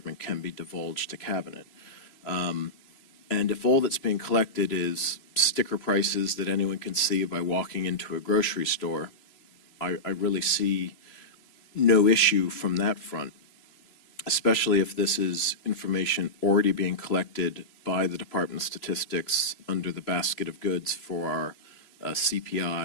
can be divulged to Cabinet. And if all that's being collected is sticker prices that anyone can see by walking into a grocery store, I really see no issue from that front, especially if this is information already being collected by the Department of Statistics under the basket of goods for our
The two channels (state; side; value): late; right; 3.0 ms